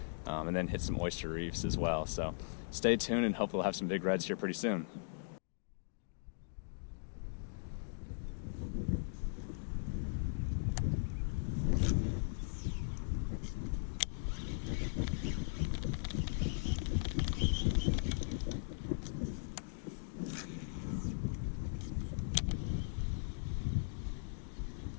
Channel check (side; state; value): right; silent; digital silence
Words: and then hit some oyster reefs as well. So stay tuned, and hopefully we'll have some big reds here pretty soon.